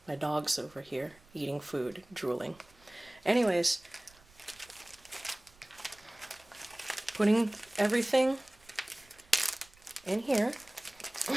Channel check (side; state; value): right; noise; rumble, 27 dB below the sound